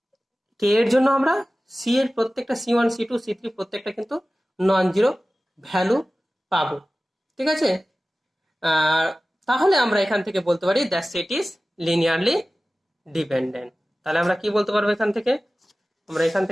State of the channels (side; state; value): both; normal; correlation 0.96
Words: কে এর জন্য আমরা সি এর প্রত্যেকটা c1 c2 c3 প্রত্যেকটা কিন্তু নন জিরো ভ্যালু পাবো, ঠিক আছে। তাহলে আমরা এখান থেকে বলতে পারি that set is linearly dependent. তাহলে আমরা কি বলতে পারবো এখান থেকে, আমরা এখান